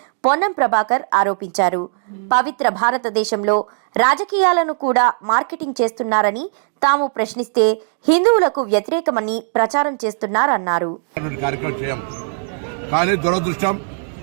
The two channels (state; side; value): silent; left; digital silence